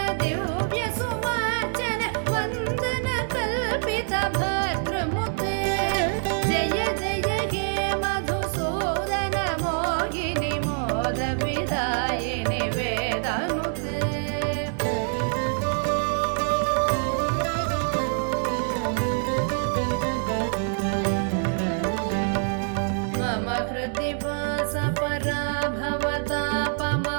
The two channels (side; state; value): left; silent; 56 dB below the other